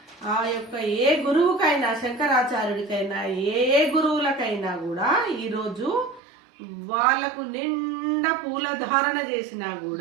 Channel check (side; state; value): left; drops out; at 6.2 s